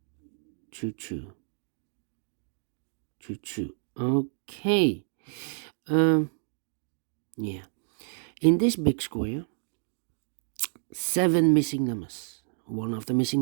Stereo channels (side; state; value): left; silent; digital silence